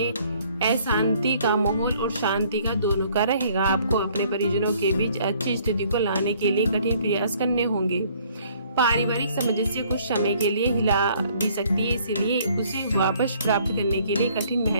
अशांति का माहौल और शांति का दोनों का रहेगा। आपको अपने परिजनों के बीच अच्छी स्थिति को लाने के लिए कठिन प्रयास करने होंगे। पारिवारिक सामंजस्य कुछ समय के लिए हिला भी सकती है, इसलिए उसे वापस प्राप्त करने के लिए कठिन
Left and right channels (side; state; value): both; inverted; correlation -0.61